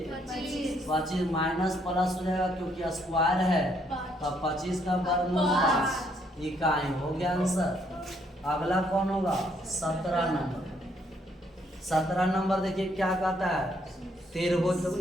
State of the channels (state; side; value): normal; both; correlation 0.70